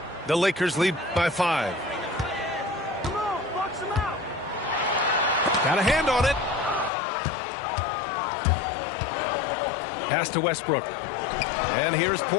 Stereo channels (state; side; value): drops out; right; at 6.9 s